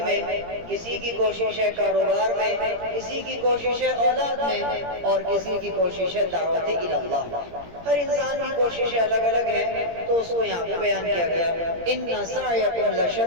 میں، کسی کی کوشش ہے کاروبار میں، کسی کی کوشش ہے اولاد میں، اور کسی کی کوشش ہے دعوت اللہ۔ ہر انسان کی کوششیں الگ الگ ہیں، تو اس کو یہاں پہ بیان کیا گیا، ان سعیکم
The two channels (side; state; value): left; late; 17 ms